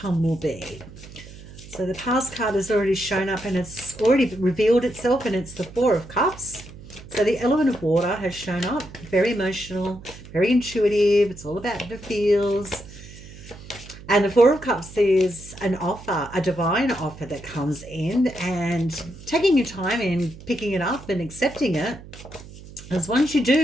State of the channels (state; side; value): noise; right; hum, 17 dB below the sound